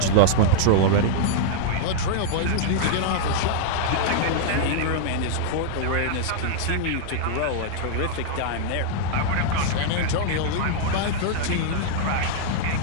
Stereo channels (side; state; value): both; different; correlation -0.01